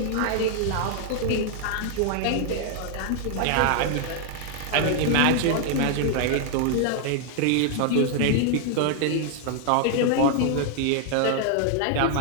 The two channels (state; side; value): different; both; correlation 0.00